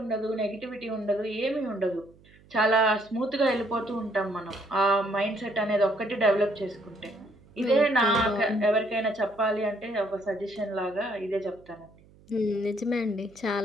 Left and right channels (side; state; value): right; noise; hum, 27 dB below the sound